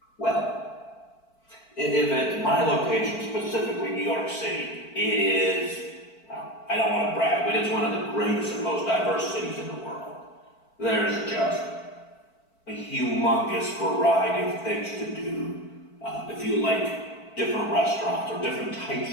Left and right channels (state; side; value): late; right; 4.5 ms